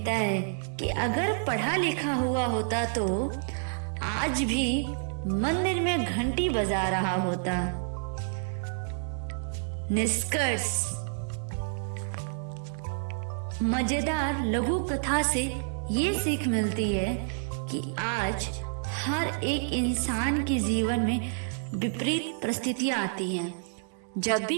है कि अगर पढ़ा लिखा हुआ होता तो आज भी मंदिर में घंटी बजा रहा होता। निष्कर्ष, मजेदार लघु कथा से ये सीख मिलती है कि आज हर एक इंसान के जीवन में विपरीत परिस्थितियां आती हैं। जब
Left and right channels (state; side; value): silent; left; digital silence